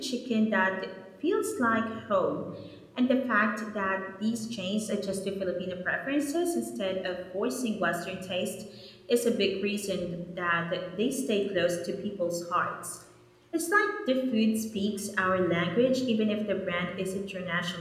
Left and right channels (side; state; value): both; identical; correlation 1.00